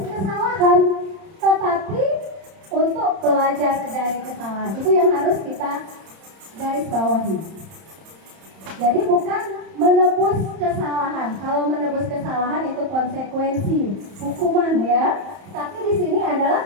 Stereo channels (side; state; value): left; late; 31 ms